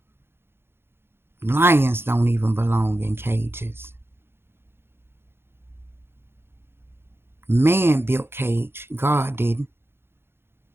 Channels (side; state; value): left; late; 0.11 ms